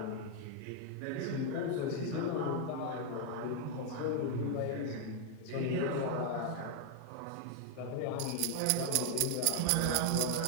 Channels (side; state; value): both; different; correlation 0.00